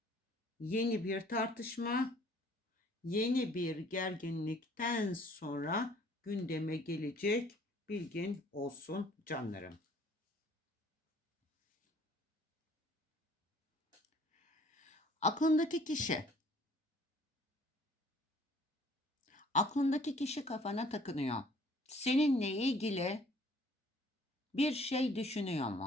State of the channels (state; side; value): normal; both; correlation 0.56